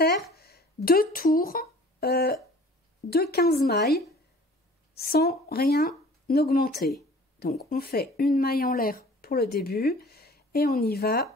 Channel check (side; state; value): both; normal; correlation 0.48